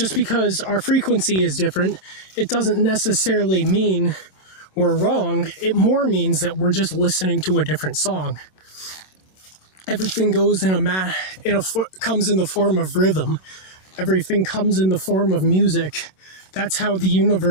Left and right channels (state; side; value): late; right; 27 ms